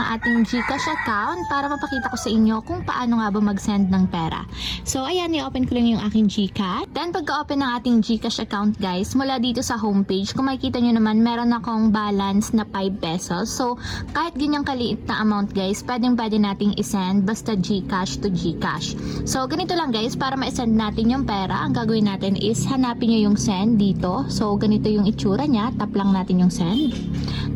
ating GCash account para mapakita ko sa inyo kung paano nga ba mag-send ng pera. So ayan, i-open ko lang yung aking GCash. Then pagka-open ng ating GCash account guys, mula dito sa homepage, kung makikita nyo naman, meron akong balance na 5 pesos. So kahit ganyang kaliit na amount guys, pwede nating isend basta GCash to GCash. So ganito lang guys, para ma-send natin yung pera, ang gagawin natin is hanapin nyo yung send dito. So ganito yung itsura nya, tap lang natin yung send.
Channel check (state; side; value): identical; both; correlation 1.00